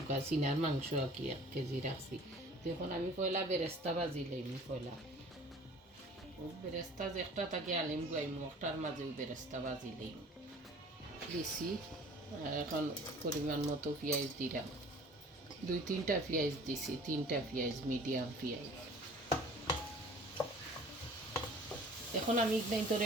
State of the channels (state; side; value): normal; both; correlation 0.48